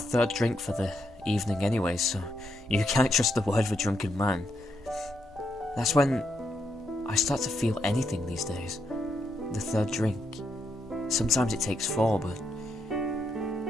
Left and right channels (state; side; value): normal; both; correlation 0.80